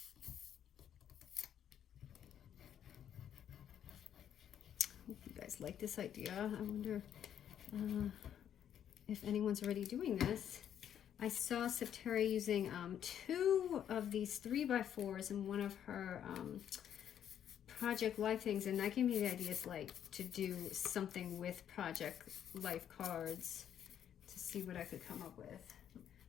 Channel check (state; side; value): quieter; right; 9.6 dB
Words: Hope you guys like this idea. I wonder if anyone's already doing this. I saw Septera using 2 of these 3x4s in one of her Project Life things, and that gave me the ideas like to do something with Project Life cards to see what I could come up with.